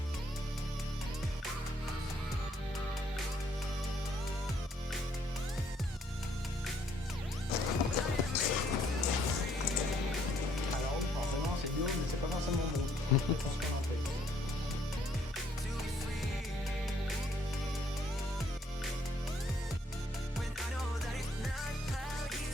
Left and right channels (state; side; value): normal; both; correlation 0.67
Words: Alors forcément c'est bio, mais c'est pas forcément bon.